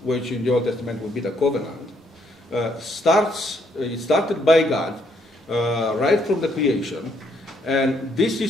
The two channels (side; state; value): both; normal; correlation 0.71